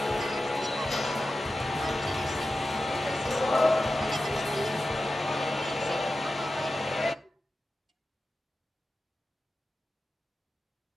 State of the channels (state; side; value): normal; both; correlation 0.93